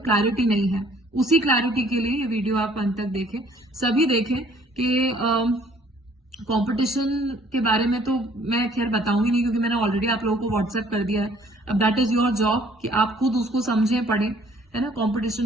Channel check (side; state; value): both; normal; correlation 0.59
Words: क्लैरिटी नहीं है। उसी क्लैरिटी के लिए ये वीडियो आप अंत तक देखें, सभी देखें कि कंपटीशन के बारे में तो मैं खैर बताऊंगी नहीं, क्योंकि मैंने ऑलरेडी आप लोगों को व्हाट्सएप कर दिया है। अब दैट इज योर जॉब कि आप खुद उसको समझें, पढ़ें, है ना।